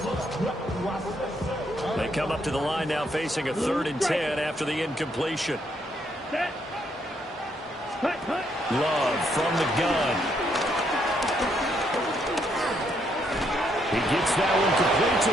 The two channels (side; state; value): both; normal; correlation 0.74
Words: They come up to the line now facing a 3rd and 10 after the incompletion. Love from the gun. He gets that one complete to